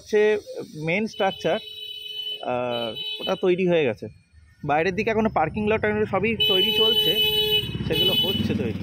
মেন স্ট্রাকচার, ওটা তৈরি হয়ে গেছে। বাইরের দিকে এখনো পার্কিং লট সবই তৈরি চলছে, সেগুলো হচ্ছে তৈরি।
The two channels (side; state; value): both; identical; correlation 1.00